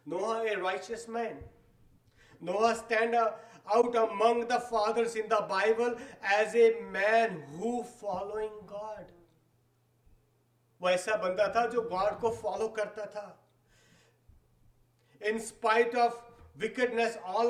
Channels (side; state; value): both; identical; correlation 1.00